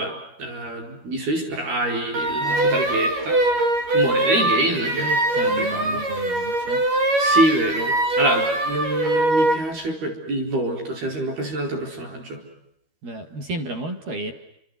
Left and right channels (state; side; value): late; left; 13 ms